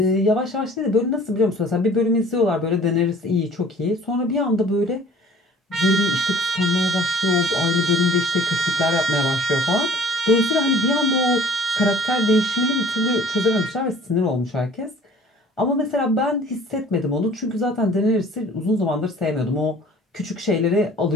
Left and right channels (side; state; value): both; normal; correlation 0.50